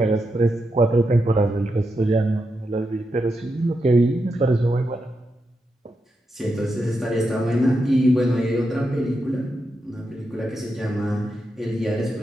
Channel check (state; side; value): normal; both; correlation 0.86